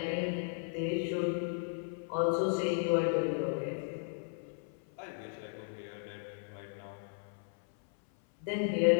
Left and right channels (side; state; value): right; silent; 54 dB below the other